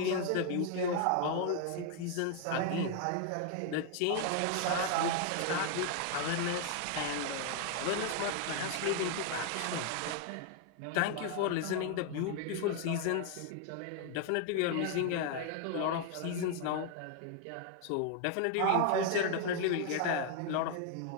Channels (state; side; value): different; both; correlation 0.00